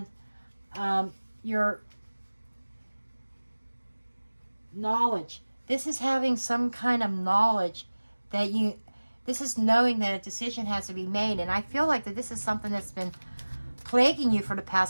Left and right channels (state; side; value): inverted; both; correlation -1.00